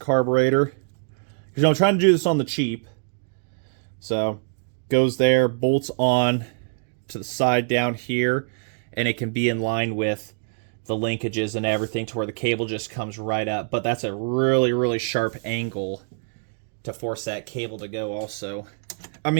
because, you know, I'm trying to do this on the cheap. So goes there, bolts on to the side down here, and it can be in line with the linkages and everything to where the cable just comes right up. But that's a really, really sharp angle to force that cable to go also. I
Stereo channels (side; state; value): left; silent; digital silence